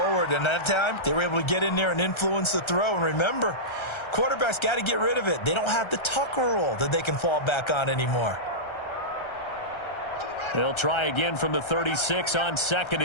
And that time, they were able to get in there and influence the throw. And remember, quarterbacks got to get rid of it. They don't have the Tucker rule that they can fall back on anymore. They'll try again from the 36 on 2nd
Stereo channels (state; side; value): late; right; 1.3 ms